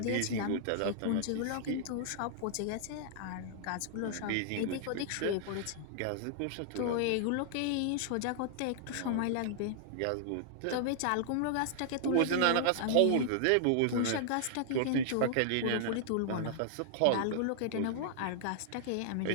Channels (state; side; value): different; both; correlation -0.01